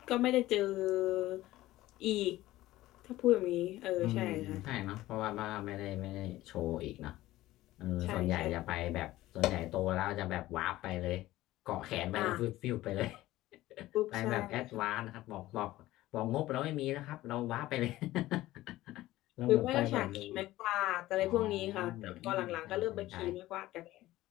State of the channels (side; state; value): right; quieter; 16.4 dB